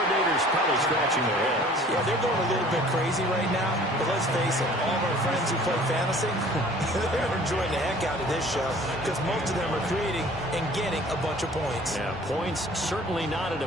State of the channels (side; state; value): both; normal; correlation 0.50